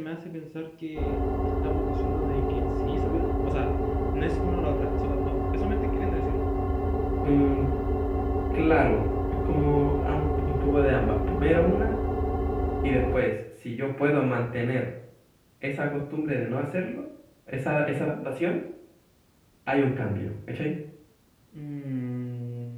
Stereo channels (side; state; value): both; identical; correlation 1.00